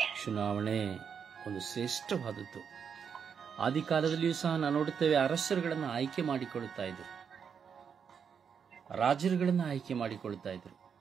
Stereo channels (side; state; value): left; quieter; 7.0 dB